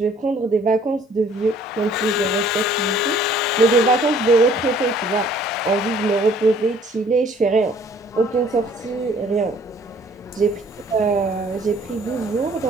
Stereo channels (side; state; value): both; normal; correlation 0.57